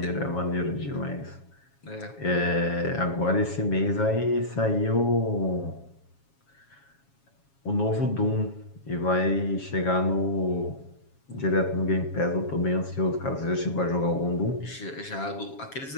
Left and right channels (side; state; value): right; late; 7.3 ms